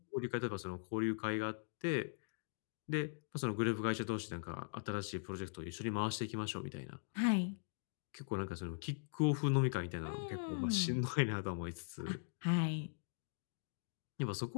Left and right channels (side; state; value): right; silent; digital silence